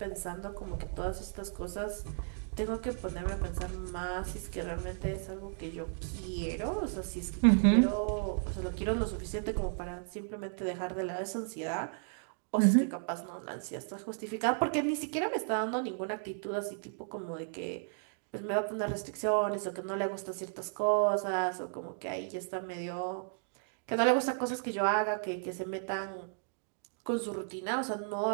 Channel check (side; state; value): left; silent; digital silence